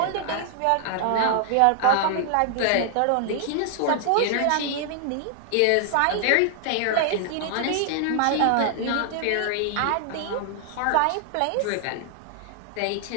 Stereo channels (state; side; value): different; both; correlation 0.00